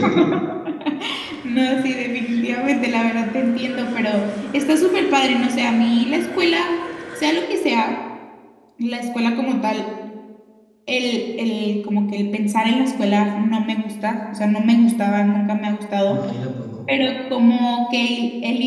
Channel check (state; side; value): identical; both; correlation 1.00